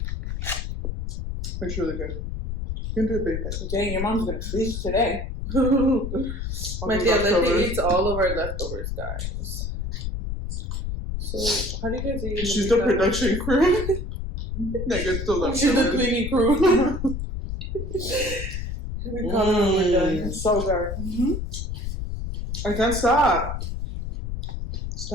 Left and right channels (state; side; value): noise; left; rumble, 4 dB below the sound